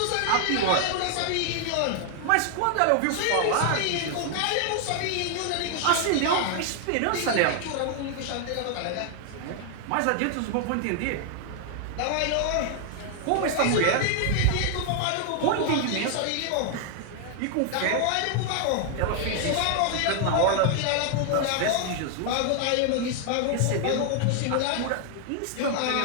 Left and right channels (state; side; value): different; both; correlation 0.00